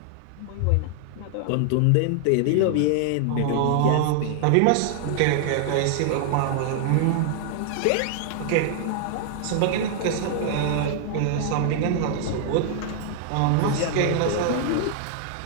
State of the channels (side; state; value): both; different; correlation 0.00